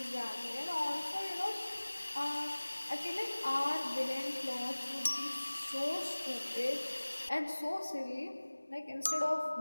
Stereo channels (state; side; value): inverted; both; correlation -1.00